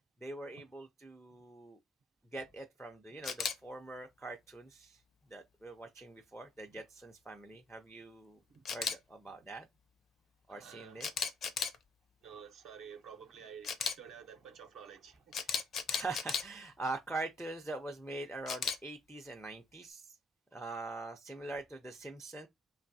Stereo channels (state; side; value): normal; both; correlation 0.68